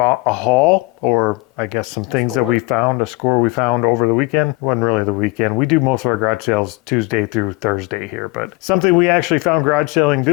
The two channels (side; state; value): right; quieter; 24.9 dB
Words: haul, or I guess some things that we found, a score we found over the weekend. It wasn't really the weekend. We do most of our garage sales Tuesday through Thursday here, but something we actually found garage selling